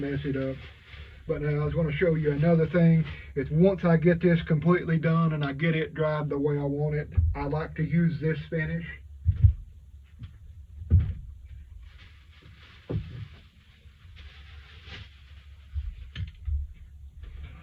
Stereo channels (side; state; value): both; identical; correlation 1.00